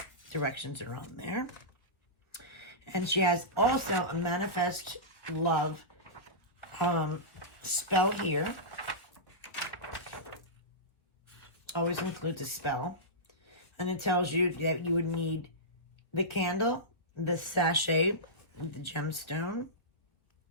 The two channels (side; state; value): right; late; 1.8 ms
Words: Directions are on there. And she has also a Manifest Love spell here. Always includes a spell. And it tells you that you would need the candle, the sachet, the gemstone,